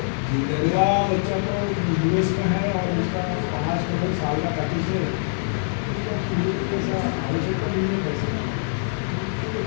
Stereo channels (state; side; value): silent; right; digital silence